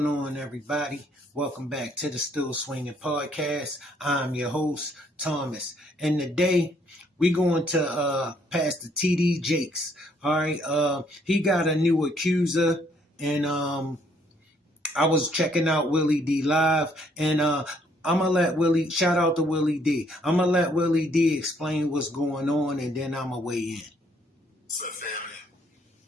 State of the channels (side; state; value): both; normal; correlation 0.67